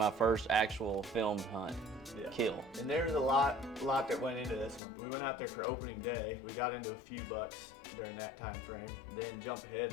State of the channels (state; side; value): drops out; right; at 4.8 s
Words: first actual filmed hunt. Yeah. Kill. And there was a lot that went into this one. We went out there for opening day. We got into a few bucks during that time frame. Then jump